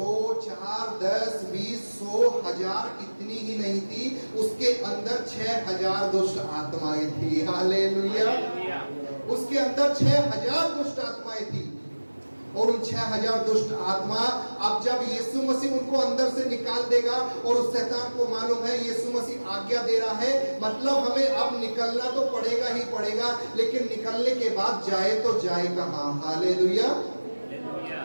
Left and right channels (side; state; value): both; inverted; correlation -1.00